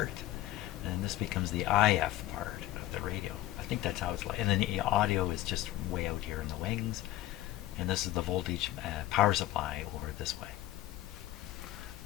and this becomes the IF part of the radio. I think that's how it's like. And then the audio is just way out here in the wings. And this is the voltage power supply over this way.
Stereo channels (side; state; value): right; quieter; 15.4 dB